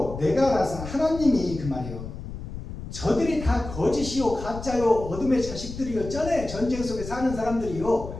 내가라서 하나님이 그 말이요. 저들이 다 거짓이요 가짜요 어둠의 자식들이요 전쟁 속에 사는 사람들이요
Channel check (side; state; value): left; noise; rumble, 10 dB below the sound